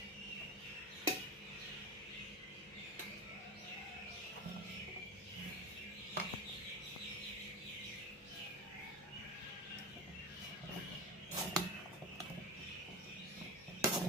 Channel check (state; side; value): normal; both; correlation 0.26